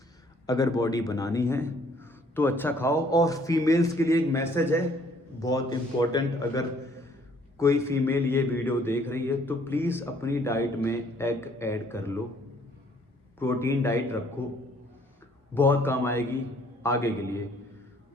अगर बॉडी बनानी है तो अच्छा खाओ। और फीमेल्स के लिए एक मैसेज है, बहुत इम्पोर्टेंट, अगर कोई फीमेल ये वीडियो देख रही है तो प्लीज़ अपनी डाइट में एग ऐड कर लो, प्रोटीन डाइट रखो, बहुत काम आएगी आगे के लिए।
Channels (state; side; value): normal; both; correlation 0.61